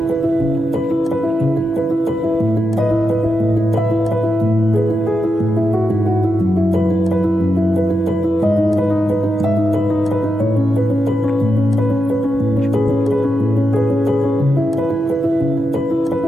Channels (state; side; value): normal; both; correlation 0.87